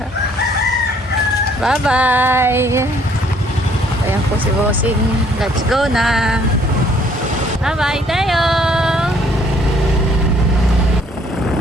Bye-bye. Ayan po si Bossing. Let's go na. Bye-bye, Teo.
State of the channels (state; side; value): normal; both; correlation 0.63